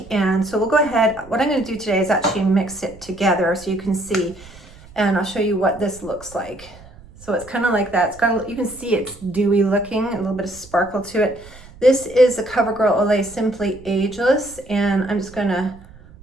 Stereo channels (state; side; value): noise; right; rumble, 21 dB below the sound